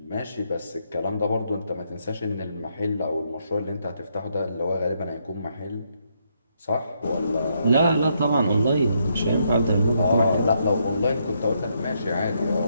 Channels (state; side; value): inverted; both; correlation -0.76